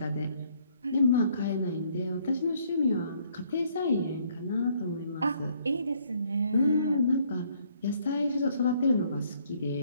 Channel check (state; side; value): inverted; both; correlation -0.65